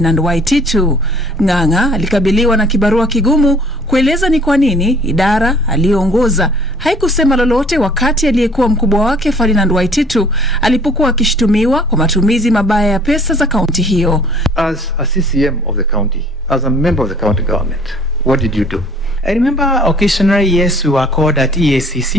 Waititu. Ng'ang'a alikabiliwa na kibarua kigumu kueleza ni kwa nini idara aliyoongoza haikusema lolote wakati aliyekuwa mkubwa wake Ferdinand Waititu alipokuwa akishtumiwa kwa matumizi mabaya ya pesa za kaunti hiyo. As a CCM of the county, as a member of the county government, what did you do? I remember occasionally, yes, we were called at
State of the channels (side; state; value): both; normal; correlation 0.55